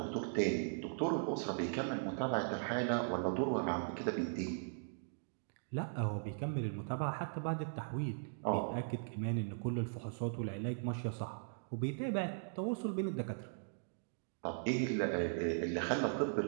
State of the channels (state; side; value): silent; left; digital silence